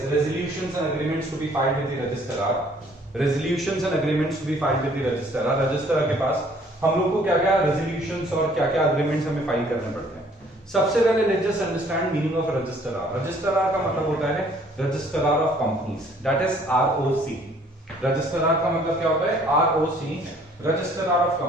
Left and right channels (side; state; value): both; normal; correlation 0.59